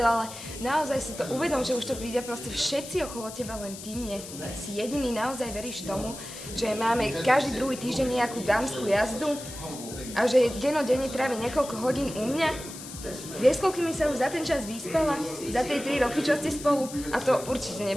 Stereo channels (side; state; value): left; noise; hiss, 12 dB below the sound